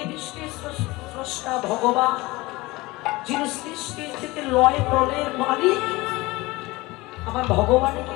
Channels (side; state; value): right; quieter; 21.5 dB